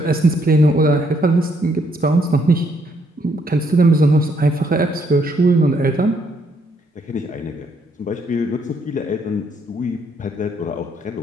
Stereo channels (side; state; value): both; normal; correlation 0.71